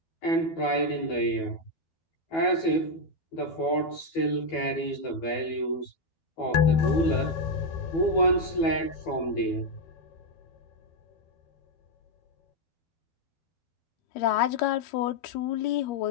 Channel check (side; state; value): right; late; 12 ms